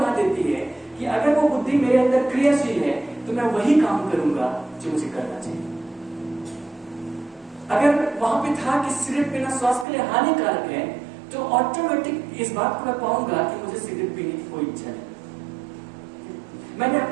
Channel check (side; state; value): left; drops out; at 9.9 s